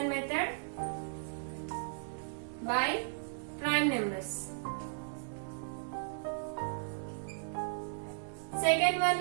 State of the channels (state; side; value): silent; left; digital silence